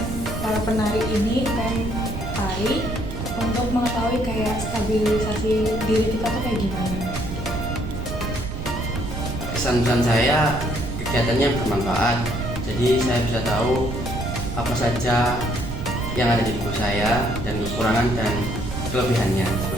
para penari ini dan tari untuk mengetahui kayak stabilisasi diri kita tuh kayak gimana. Pesan-pesan saya, kegiatannya bermanfaat, jadi saya bisa tahu apa saja yang ada di tubuh saya dan kekurangan dan kelebihannya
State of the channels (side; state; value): right; noise; rumble, 6 dB below the sound